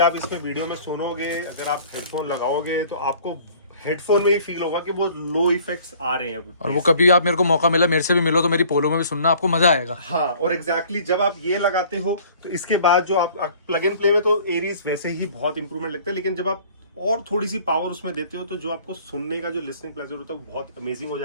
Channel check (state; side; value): inverted; both; correlation -0.52